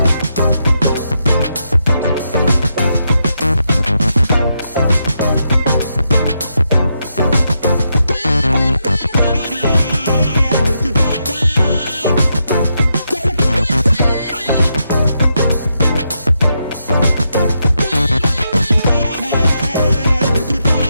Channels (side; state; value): both; inverted; correlation -0.82